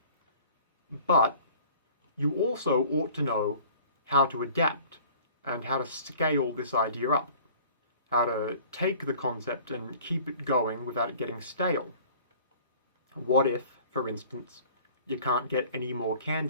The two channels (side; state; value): both; inverted; correlation -0.49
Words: But you also ought to know how to adapt and how to scale this idea up. How to take the concept and keep it going without it getting stale. What if, for instance, you can't get any more